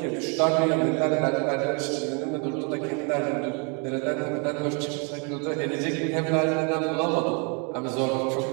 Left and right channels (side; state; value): left; quieter; 35.1 dB